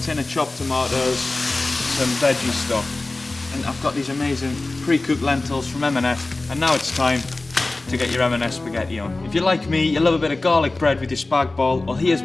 of chopped tomatoes, some veggie stock. And I've got these amazing pre-cooked lentils from M&S, and now it's time to get your M&S spaghetti on. If you're like me, you love a bit of garlic bread with your spag bol, well here's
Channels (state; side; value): quieter; right; 3.1 dB